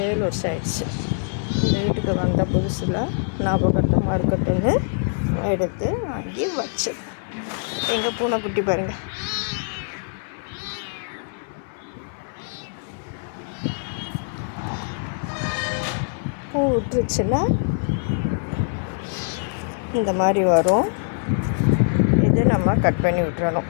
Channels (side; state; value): right; silent; 60 dB below the other